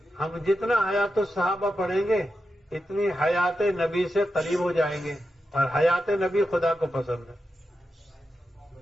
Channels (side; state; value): both; normal; correlation 0.89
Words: ہم جتنا حیات الصحابہ پڑھیں گے اتنی حیات نبی سے قریب ہو جائیں گے. اور حیات نبی خدا کو پسند ہے.